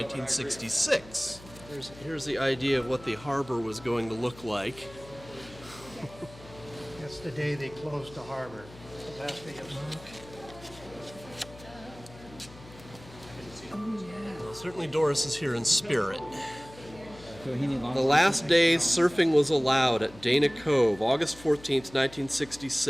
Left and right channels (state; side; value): noise; left; hum, 19 dB below the sound